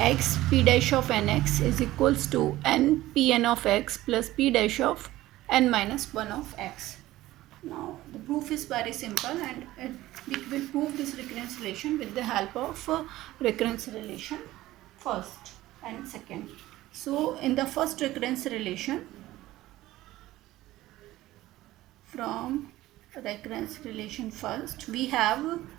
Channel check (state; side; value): quieter; left; 16.2 dB